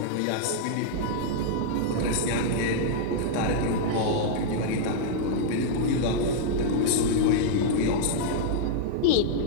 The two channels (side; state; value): both; different; correlation -0.02